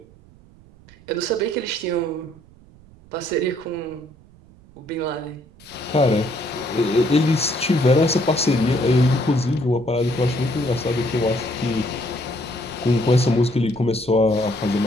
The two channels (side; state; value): right; noise; rumble, 25 dB below the sound